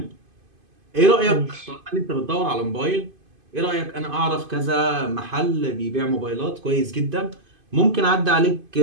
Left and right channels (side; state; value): left; late; 2.5 ms